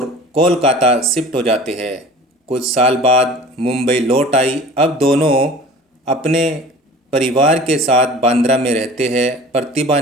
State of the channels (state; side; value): normal; both; correlation 0.42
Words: कोलकाता शिफ्ट हो जाते हैं। कुछ साल बाद मुंबई लौट आई। अब दोनों अपने परिवार के साथ बांद्रा में रहते हैं। प्रतिभा